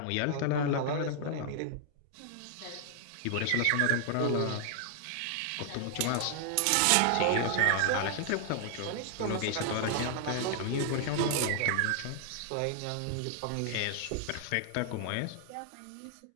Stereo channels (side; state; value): both; different; correlation 0.00